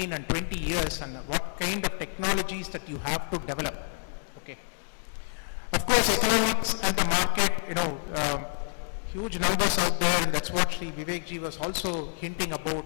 and 20 years, and what kind of technologies that you have to develop. Okay. Of course, economics and the market, huge numbers out there, and that's what Sri Vivekji was also hinting about.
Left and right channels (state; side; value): silent; right; digital silence